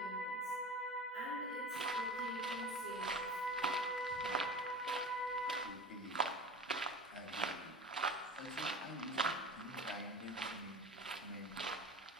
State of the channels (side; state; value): both; normal; correlation 0.33